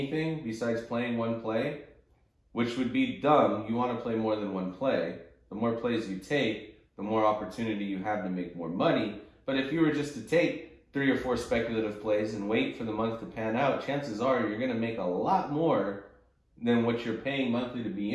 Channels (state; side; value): identical; both; correlation 1.00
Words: besides playing one play? Which would be dumb. You want to play more than one play. The more plays you take, the more opportunity you have to make more money. But if you were just to take 3 or 4 speculative plays and wait for the month to pan out, chances are you're going to make a lot more than what you're paying monthly to be